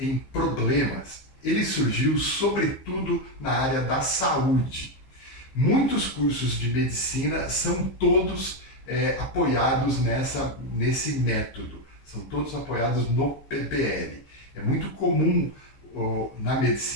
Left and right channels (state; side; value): late; right; 15 ms